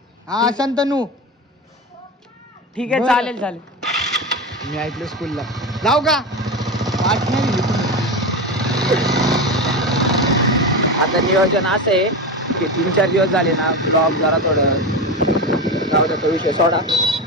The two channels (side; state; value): both; normal; correlation 0.20